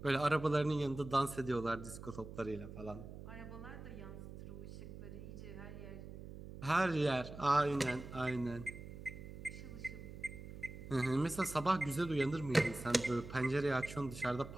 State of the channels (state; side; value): noise; right; hum, 12 dB below the sound